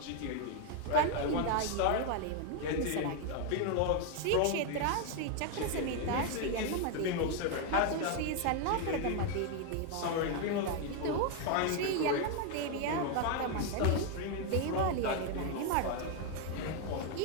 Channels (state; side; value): different; both; correlation 0.01